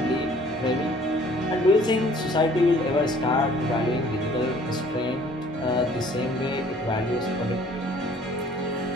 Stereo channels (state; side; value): normal; both; correlation 0.55